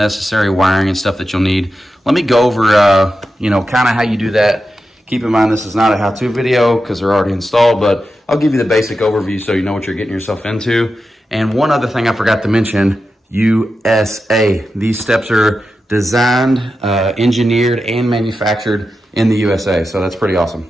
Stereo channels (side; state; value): both; normal; correlation 0.90